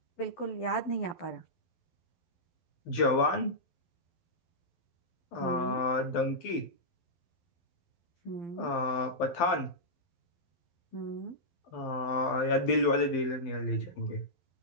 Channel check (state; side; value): late; right; 12 ms